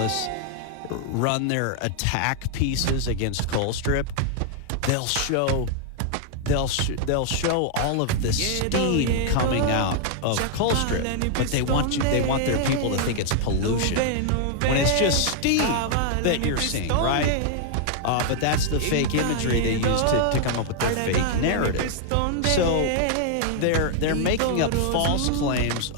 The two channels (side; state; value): both; different; correlation 0.00